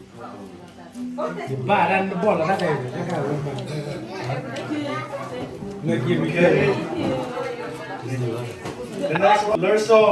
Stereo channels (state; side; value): identical; both; correlation 1.00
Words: Ba đang bỏ là ra đây người kia mình kia The next one,